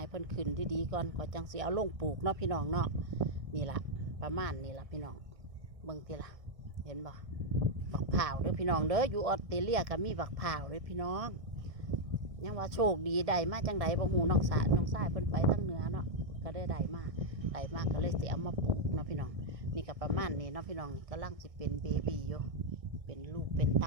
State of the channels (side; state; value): left; late; 1.6 ms